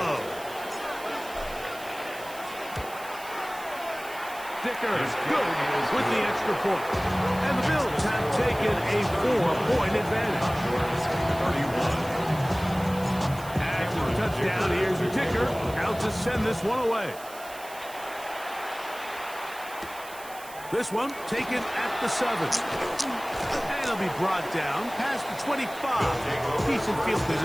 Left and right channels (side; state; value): right; noise; hiss, 17 dB below the sound